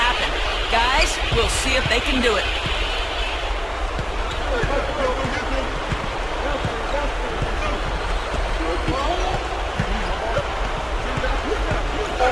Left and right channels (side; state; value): both; identical; correlation 1.00